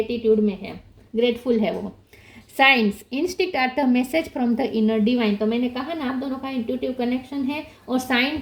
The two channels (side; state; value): both; identical; correlation 1.00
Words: में है, ग्रेटफुल है वो। Signs, instinct are the message from the inner divine. तो मैंने कहा ना, आप दोनों का इंट्यूटिव कनेक्शन है और साइन